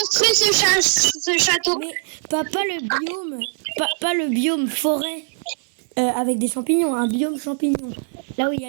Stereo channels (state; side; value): silent; left; 65 dB below the other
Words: ce château. Mais pas le biome, pas le biome forêt avec des champignons, un biome champignon. Là où il y